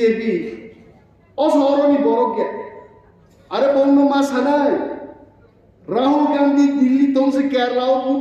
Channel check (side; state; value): both; identical; correlation 1.00